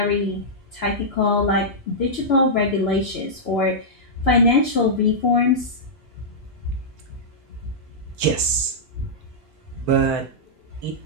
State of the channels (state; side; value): normal; both; correlation -0.11